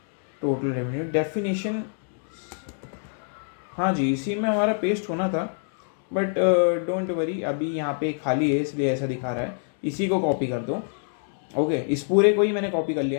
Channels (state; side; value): silent; right; 58 dB below the other